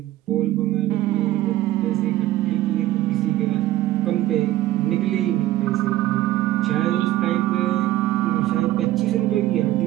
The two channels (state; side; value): quieter; left; 14.8 dB